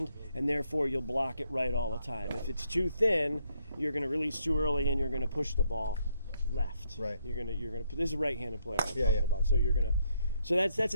and therefore you'll block it right all the time. If it's too thin, you're going to release too early, and you're going to push the ball left. Right. You're going to. This is a right-handed player I'm talking about. So you're going to. So that's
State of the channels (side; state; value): both; inverted; correlation -0.73